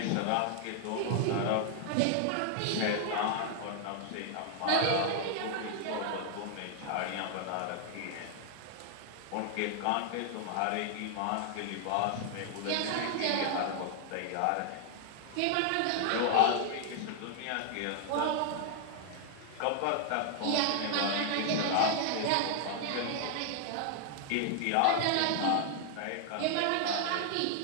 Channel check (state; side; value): different; both; correlation 0.00